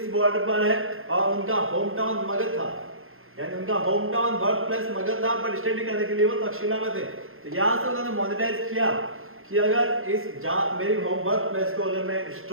बॉर्डर पर है और उनका होम टाउन मगध था, यानी उनका home town birth place Magadh था, बट स्टडी करने के लिए वो तक्षशिला में थे। तो यहाँ से उन्होंने मॉनिटाइज किया कि अगर इस मेरी होम बर्थ प्लेस को अगर मैं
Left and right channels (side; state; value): left; late; 0.61 ms